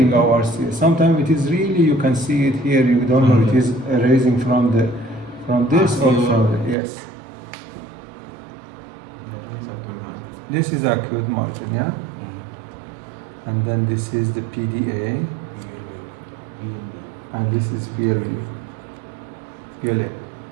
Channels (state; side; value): drops out; left; at 6.8 s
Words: Sometimes it is really, you can see it here, you don't know it is arising from this or from the, yes. This is acute margin, yeah? And then this is the PDA, and this is PLA,